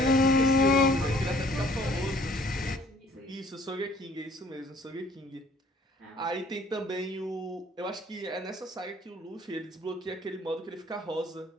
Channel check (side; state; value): both; normal; correlation 0.57